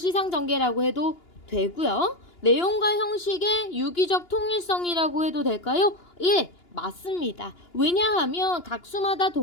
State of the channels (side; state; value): right; late; 2.8 ms